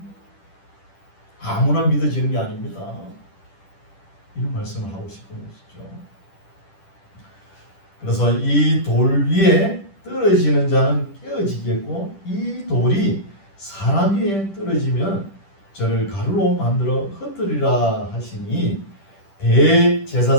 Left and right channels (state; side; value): late; right; 10 ms